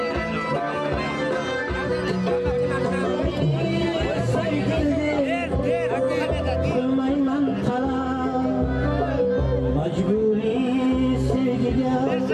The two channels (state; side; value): identical; both; correlation 1.00